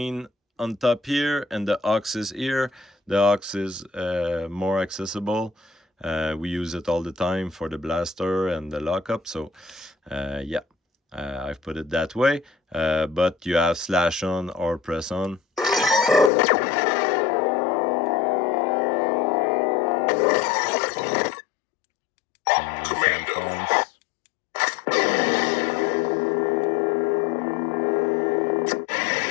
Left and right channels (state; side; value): drops out; right; at 16.3 s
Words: on top here and the aux is here. The aux is more accessible. We use it all the time for the blaster and the lockup. So yeah, I've put it that way. But you have slash on or press on. Changing soundfonts.